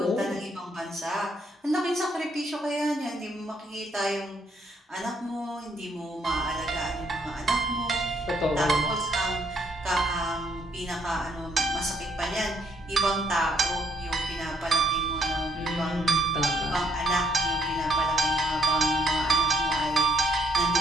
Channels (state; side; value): normal; both; correlation 0.70